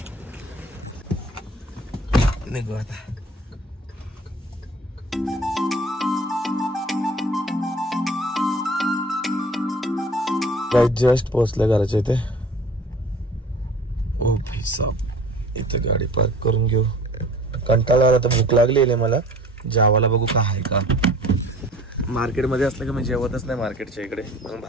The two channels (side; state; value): both; normal; correlation 0.46